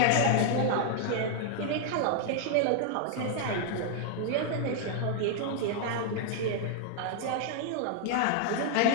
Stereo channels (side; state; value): both; different; correlation 0.00